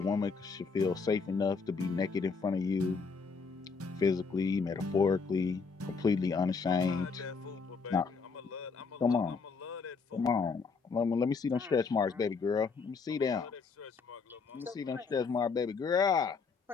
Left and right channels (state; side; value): quieter; right; 4.9 dB